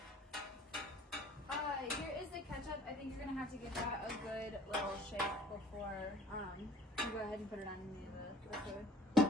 Here is the ketchup. I think you're gonna have to give that a good little shake before you go ahead and put it on the food.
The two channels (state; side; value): normal; both; correlation 0.51